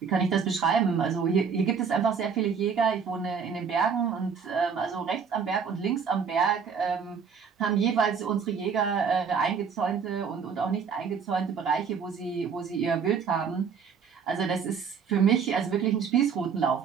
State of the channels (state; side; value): quieter; left; 6.3 dB